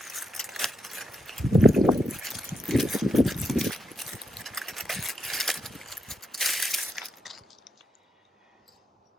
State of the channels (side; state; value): both; normal; correlation 0.83